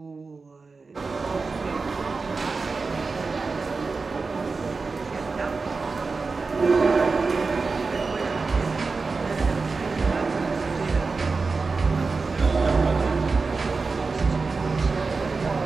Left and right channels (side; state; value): left; quieter; 4.3 dB